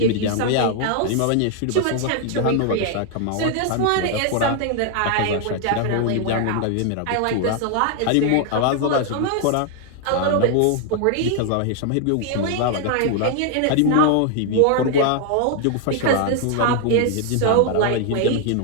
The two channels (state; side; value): different; both; correlation 0.00